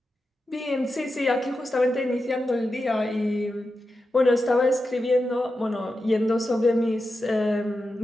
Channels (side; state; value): both; normal; correlation 0.90